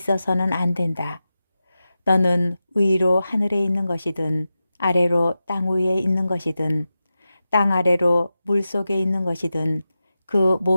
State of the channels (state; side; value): inverted; both; correlation -0.92